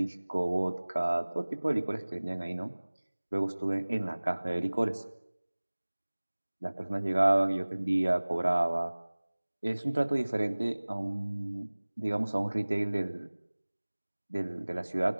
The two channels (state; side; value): inverted; both; correlation -1.00